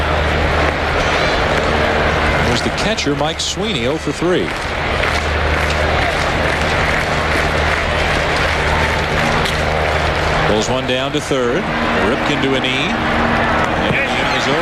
There's the catcher, Mike Sweeney, 0 for 3. Pulls one down to third. Ripken to a knee. And the inning is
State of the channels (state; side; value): identical; both; correlation 1.00